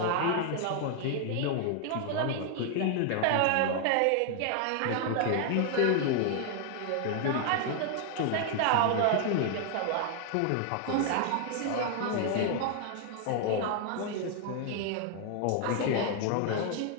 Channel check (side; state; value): both; different; correlation 0.00